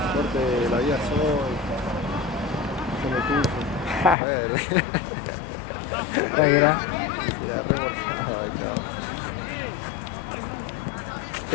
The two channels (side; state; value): right; drops out; at 4.2 s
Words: Corte la vida soy. Son de tuyo. Tranquila.